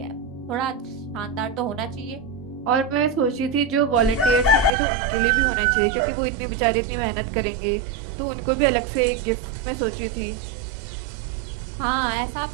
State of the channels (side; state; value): left; drops out; at 4.7 s